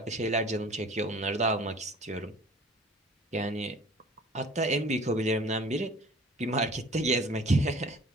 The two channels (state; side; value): normal; both; correlation 0.47